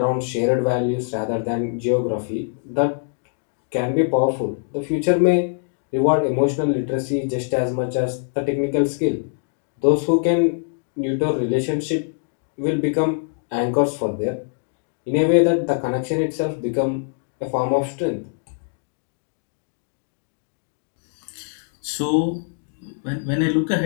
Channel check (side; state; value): right; silent; digital silence